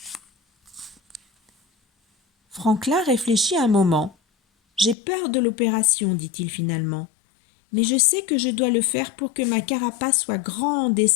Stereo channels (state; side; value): drops out; right; at 5.0 s